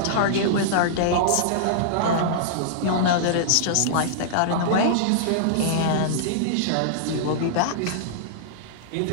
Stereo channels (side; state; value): both; different; correlation -0.02